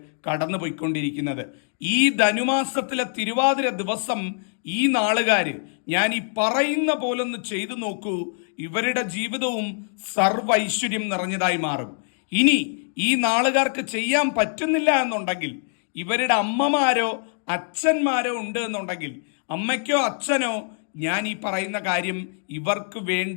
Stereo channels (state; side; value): silent; right; 56 dB below the other